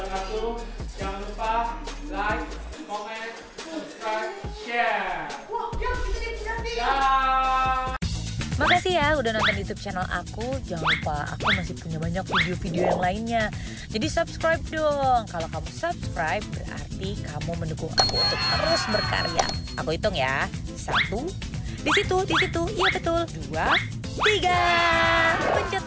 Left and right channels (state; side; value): identical; both; correlation 1.00